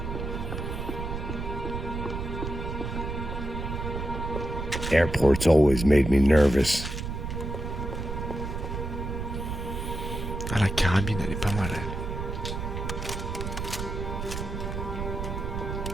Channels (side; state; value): right; noise; rumble, 5 dB below the sound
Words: Airports always made me nervous. Ah, la carabine, elle est pas mal, elle.